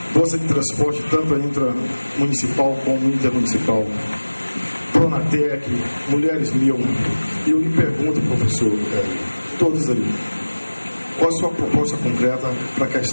bolsa de transporte, tanto intramunicipal como intermunicipal, Pronatec, Mulheres 1000. E eu lhe pergunto, professor, todos ali, qual a sua proposta concreta para a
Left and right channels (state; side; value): inverted; both; correlation -1.00